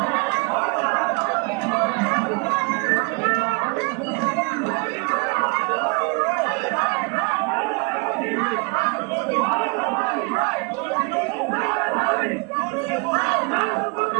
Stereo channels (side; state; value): left; quieter; 31.2 dB